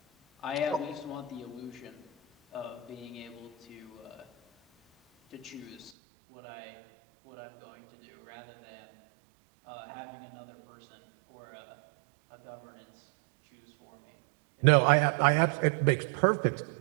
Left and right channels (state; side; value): drops out; left; at 5.9 s